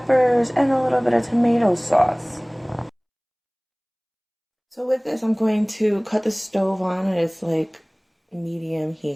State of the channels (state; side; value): identical; both; correlation 1.00